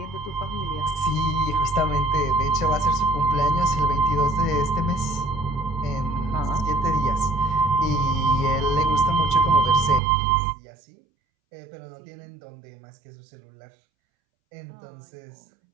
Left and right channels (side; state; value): left; drops out; at 10.0 s